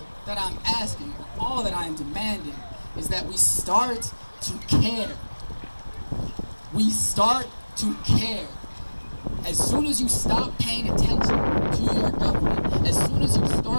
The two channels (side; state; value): both; inverted; correlation -1.00